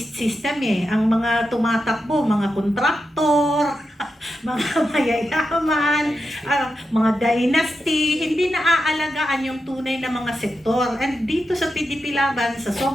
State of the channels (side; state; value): both; normal; correlation 0.88